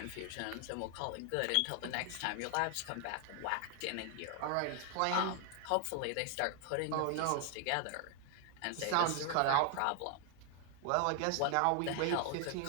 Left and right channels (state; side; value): different; both; correlation 0.00